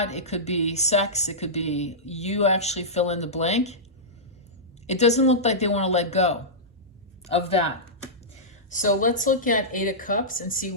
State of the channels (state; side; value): normal; both; correlation -0.15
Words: It could be sex. It could be, you actually fill in the blank. It doesn't look like they want to let go of that. So let's look at 8 of Cups and see